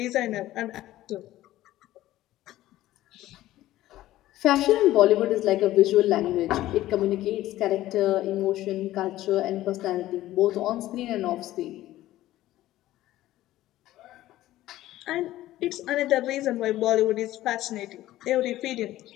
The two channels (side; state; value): right; quieter; 15.1 dB